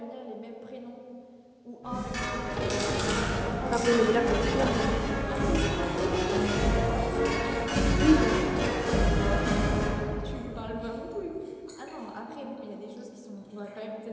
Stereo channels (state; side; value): identical; both; correlation 1.00